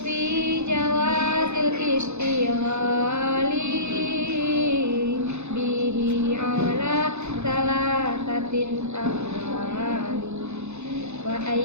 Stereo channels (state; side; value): late; left; 0.81 ms